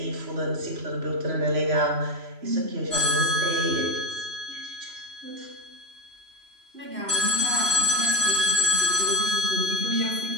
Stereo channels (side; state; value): left; late; 3.0 ms